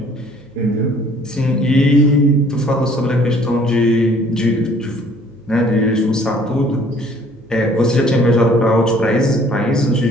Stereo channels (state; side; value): noise; left; hum, 28 dB below the sound